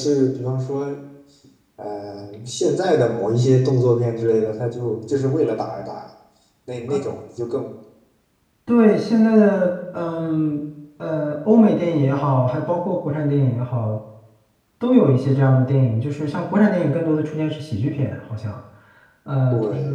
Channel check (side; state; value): both; identical; correlation 1.00